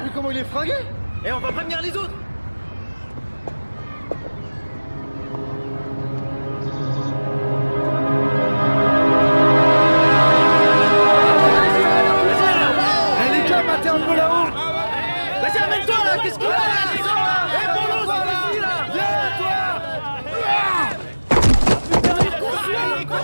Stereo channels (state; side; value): inverted; both; correlation -1.00